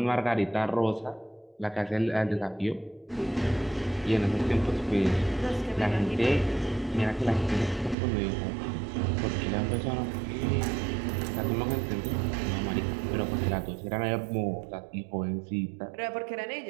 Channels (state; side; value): drops out; left; at 8.0 s